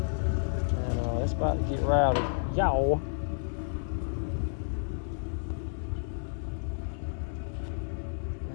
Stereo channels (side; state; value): right; silent; digital silence